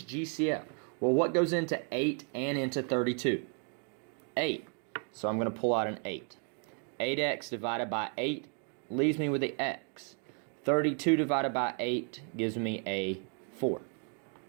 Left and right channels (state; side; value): quieter; left; 39.5 dB